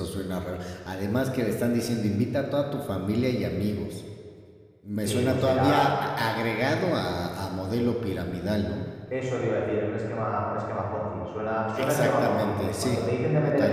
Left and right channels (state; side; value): identical; both; correlation 1.00